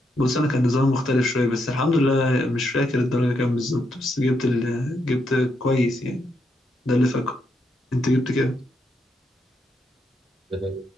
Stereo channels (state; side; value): normal; both; correlation 0.79